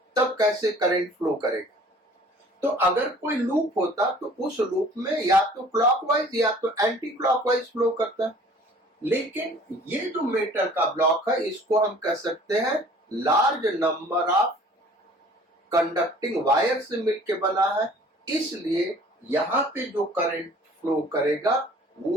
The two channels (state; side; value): normal; both; correlation 0.51